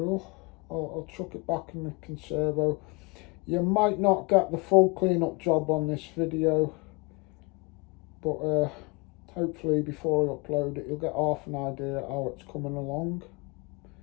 I'll chuck it back in the Conservo. You might not get the full clean-up job on this video, but hopefully before I upload it, you'll get half an idea how it's coming along.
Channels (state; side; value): quieter; right; 29.0 dB